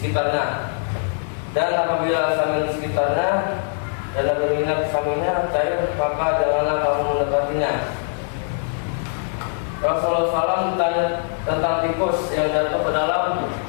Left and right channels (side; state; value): right; silent; 59 dB below the other